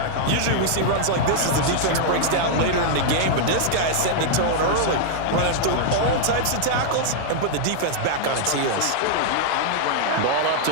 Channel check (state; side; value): different; both; correlation -0.01